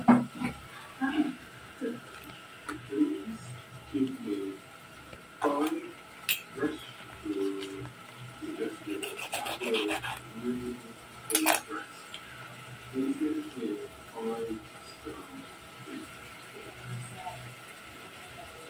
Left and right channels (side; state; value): both; identical; correlation 1.00